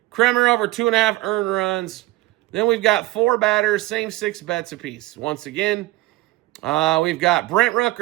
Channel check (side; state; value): left; quieter; 18.2 dB